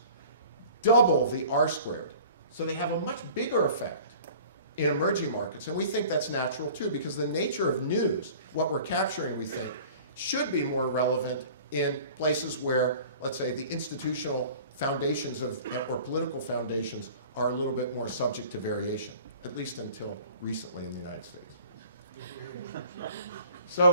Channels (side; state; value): both; inverted; correlation -0.46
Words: double the R-squared. So they have a much bigger effect in emerging markets. And we think that's natural too, because the nature of news, what we're capturing, we think, should be more relevant in places where, let's say, the institutional foundations of, or political foundations are a little bit more subject to variation, at least until recently in the United States.